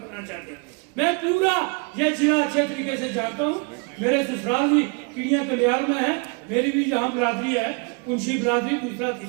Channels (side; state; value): left; quieter; 33.7 dB